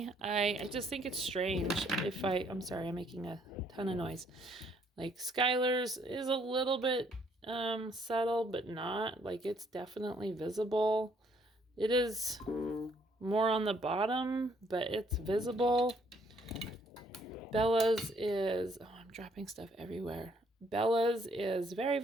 I just think it's strange. I'm sorry, I'm making a ton of noise. Like Skylar's is a little bit subtle, but not. Like it's definitely visible. It is more on the bottom, but it's visible. Bella's is, oh, I'm dropping stuff everywhere. Bella's is very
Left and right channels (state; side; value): normal; both; correlation 0.66